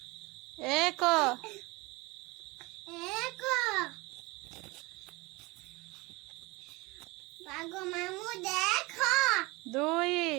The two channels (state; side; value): quieter; left; 23.6 dB